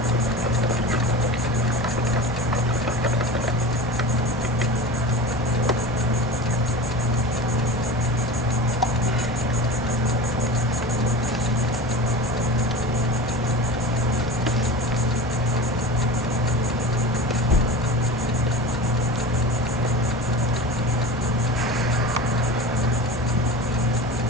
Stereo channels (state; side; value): normal; both; correlation 0.32